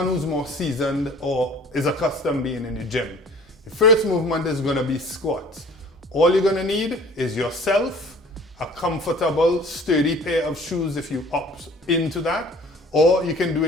who's more seasoned or is accustomed being in the gym. The first movement is going to be squats. All you're going to need is yourself, a comfortable, sturdy pair of shoes if you opt into that, or you can do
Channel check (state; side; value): normal; both; correlation 0.49